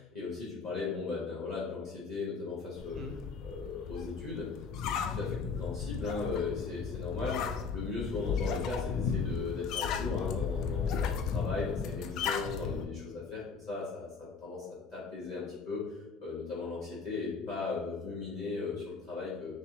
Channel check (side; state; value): right; quieter; 4.9 dB